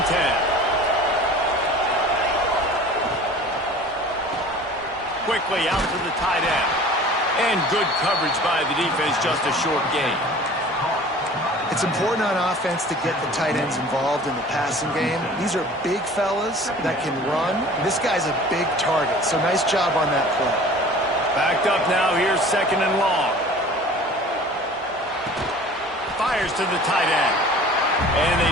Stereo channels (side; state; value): both; normal; correlation 0.44